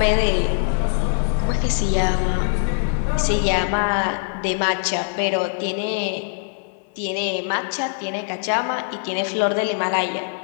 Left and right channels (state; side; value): silent; right; 64 dB below the other